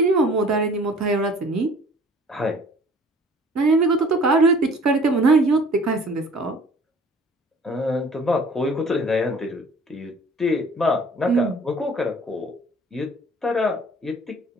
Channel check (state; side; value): normal; both; correlation 0.50